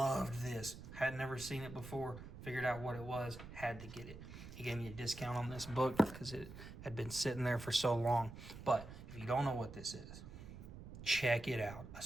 this. Had never seen it before. Figured out what it was. Had to get it. He gave me a discount on this book because it had been sitting there for so long. But if you don't know what this is, check it out.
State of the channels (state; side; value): noise; right; rumble, 12 dB below the sound